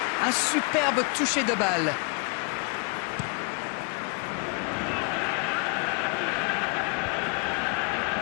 Un superbe toucher de balle.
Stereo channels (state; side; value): quieter; right; 35.2 dB